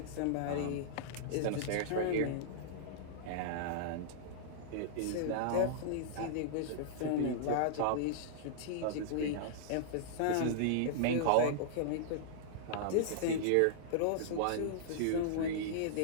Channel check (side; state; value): both; different; correlation -0.02